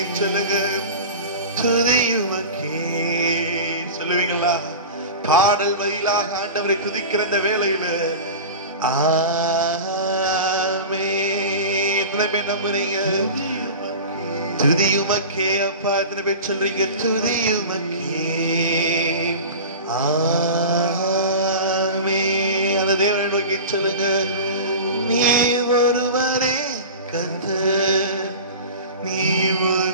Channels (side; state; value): both; inverted; correlation -0.32